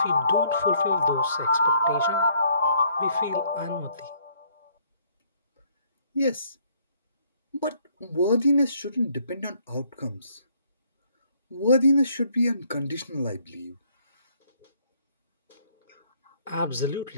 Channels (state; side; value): inverted; both; correlation -0.66